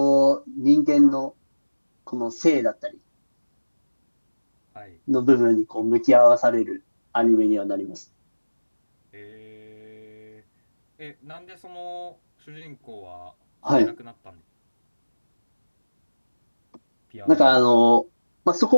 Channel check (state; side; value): inverted; both; correlation -1.00